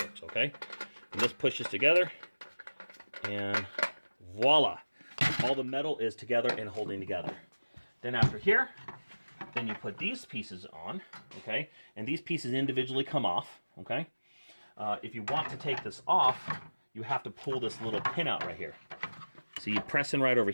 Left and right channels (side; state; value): both; inverted; correlation -1.00